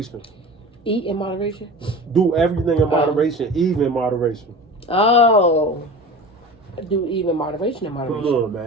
Eat in moderation? Do everything in moderation, even moderation. Oh. Do even moderation in moderation. Come on,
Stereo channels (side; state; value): both; normal; correlation 0.34